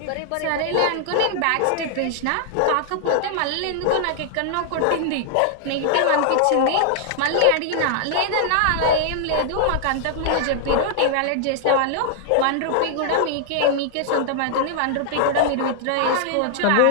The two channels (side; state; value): both; different; correlation -0.01